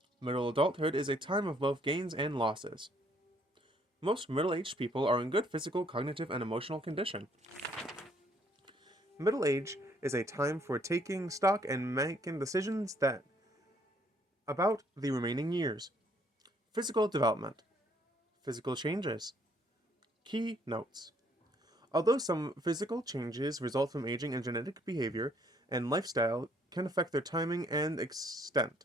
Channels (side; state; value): both; normal; correlation 0.65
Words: Middle adulthood is a time of both gains and losses. Most middle-aged people are in good physical, cognitive, and emotional condition. Middle age is a time for taking stock and making decisions about the remaining years. Physical development. Physical changes. Key notes. Although some physical changes result from aging and genetic behavior and lifestyle can affect their timing and extent,